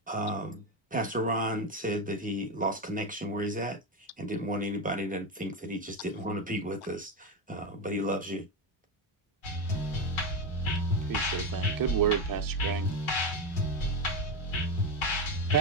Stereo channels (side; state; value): both; normal; correlation 0.12